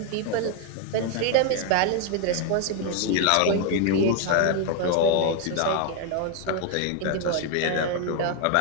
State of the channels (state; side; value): different; both; correlation 0.01